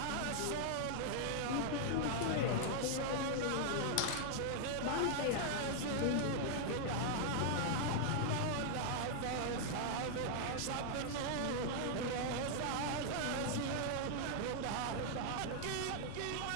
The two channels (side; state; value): both; different; correlation 0.00